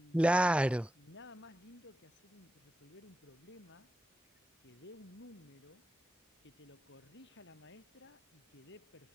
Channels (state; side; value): normal; both; correlation 0.91